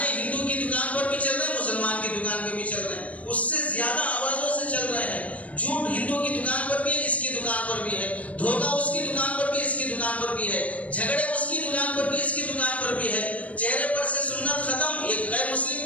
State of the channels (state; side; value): late; right; 0.067 ms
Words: ہندو کی دکان پر بھی چل رہے ہیں، مسلمان کی دکان پہ بھی چل رہے ہیں، اس سے زیادہ آوازوں سے چل رہے ہیں، جھوٹ ہندو کی دکان پر بھی ہے، اس کی دکان پر بھی ہے، دھوکہ اس کی دکان پر بھی، اس کی دکان پر بھی ہے، جھگڑے اس کی دکان پر بھی، اس کی دکان پر بھی ہے، چہرے پر سے سنت ختم، ایک غیر مسلم